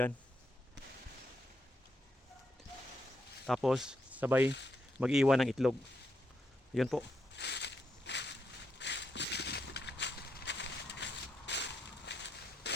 Tapos sabay mag-iwan ng itlog. Yun po.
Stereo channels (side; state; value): both; normal; correlation 0.80